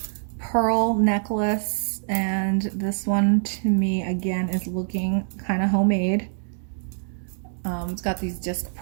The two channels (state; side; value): silent; left; digital silence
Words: pearl necklace, and this one to me again is looking kind of homemade. It's got these disc